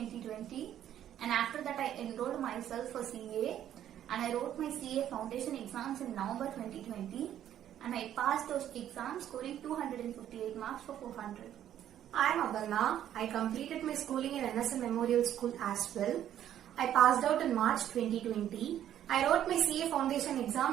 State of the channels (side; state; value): left; quieter; 11.0 dB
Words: and after that I enrolled myself for CA and I wrote my CA foundation exams in November 2020 and I passed those exams scoring 258 marks for 400. I am Abarna. I completed my schooling in NSM Memorial School as well. I passed out in March 2020. I wrote my CA Foundation